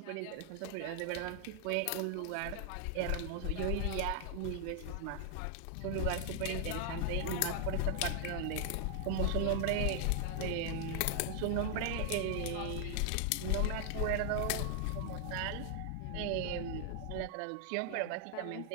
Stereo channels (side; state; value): both; different; correlation 0.00